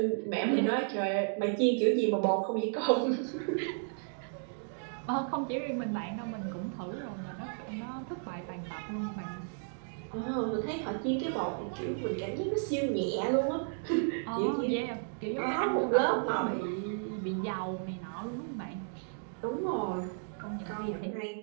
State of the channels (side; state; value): left; silent; digital silence